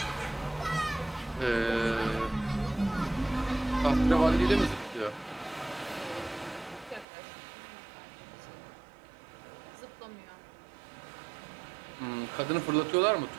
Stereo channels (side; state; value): left; drops out; at 7.1 s